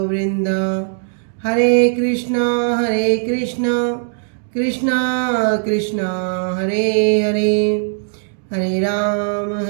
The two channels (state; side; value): silent; left; digital silence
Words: वृंद। हरे कृष्णा कृष्णा कृष्णा हरे हरे हरे राम